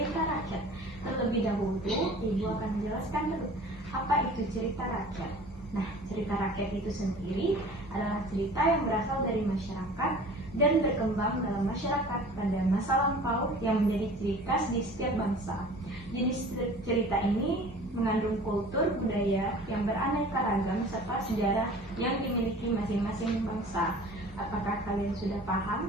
rakyat. Terlebih dahulu, Ibu akan menjelaskan dulu apa itu cerita rakyat. Nah, cerita rakyat itu sendiri adalah cerita yang berasal dari masyarakat dan berkembang dalam masyarakat pada masa lampau yang menjadi ciri khas di setiap bangsa. Jenis cerita ini mengandung kultur budaya yang beraneka ragam serta sejarah yang dimiliki masing-masing bangsa. Apakah kalian sudah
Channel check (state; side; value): normal; both; correlation 0.44